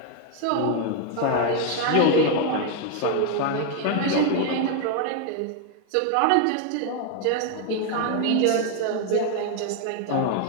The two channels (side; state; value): both; different; correlation 0.01